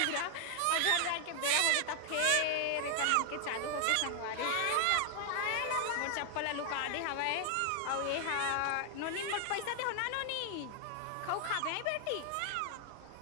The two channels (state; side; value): different; both; correlation 0.00